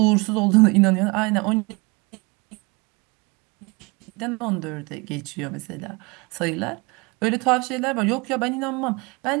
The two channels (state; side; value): quieter; left; 27.3 dB